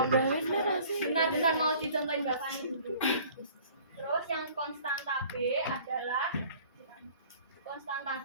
Baru? Benar-benar mau dicontohin Mbak Fani dulu. Terus yang konstanta B adalah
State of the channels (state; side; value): inverted; both; correlation -0.51